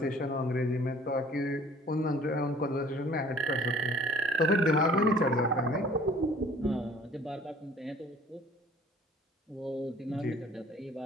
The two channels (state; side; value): normal; both; correlation 0.53